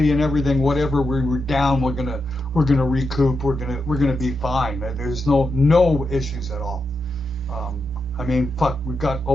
and everything, whatever we were down, we're gonna recoup. We're gonna be fine. There's no issues at all. I mean, fuck, we've got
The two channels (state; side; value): normal; both; correlation 0.86